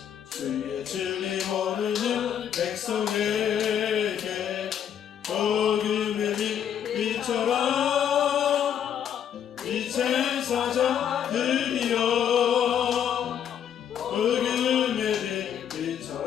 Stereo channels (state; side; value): quieter; right; 9.1 dB